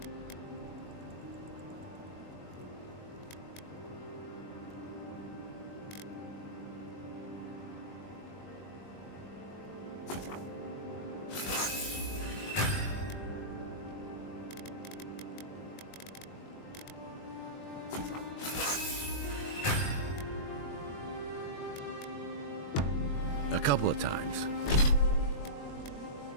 A couple of times.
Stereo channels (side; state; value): right; late; 21 ms